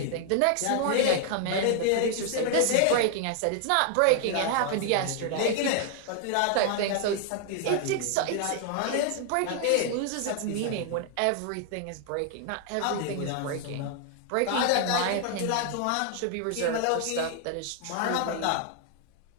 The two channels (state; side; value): different; both; correlation 0.00